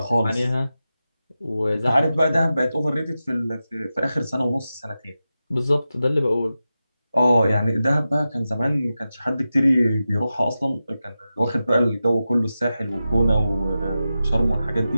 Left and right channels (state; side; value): inverted; both; correlation -0.92